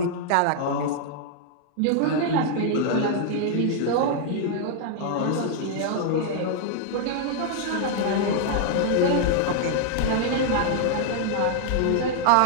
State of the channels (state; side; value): different; both; correlation -0.01